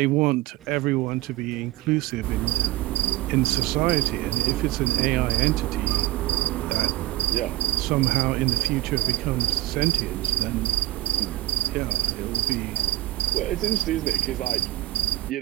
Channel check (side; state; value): left; quieter; 16.6 dB